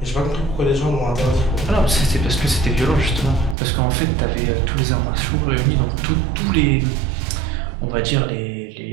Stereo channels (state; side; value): drops out; left; at 3.6 s